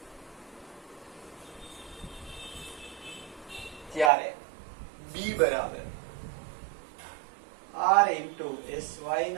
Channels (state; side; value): drops out; left; at 4.1 s